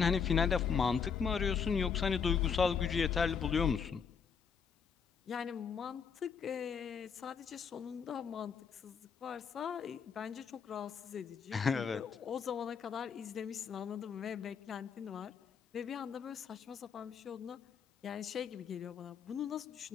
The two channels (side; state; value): right; quieter; 6.4 dB